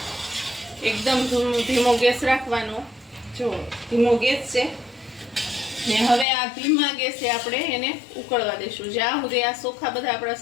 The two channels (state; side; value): drops out; right; at 6.2 s